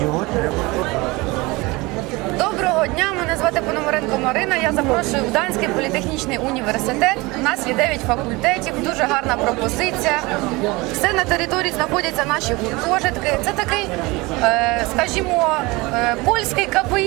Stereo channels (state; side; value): quieter; left; 23.2 dB